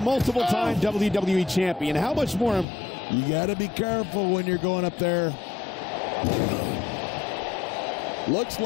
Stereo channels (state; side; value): drops out; right; at 2.7 s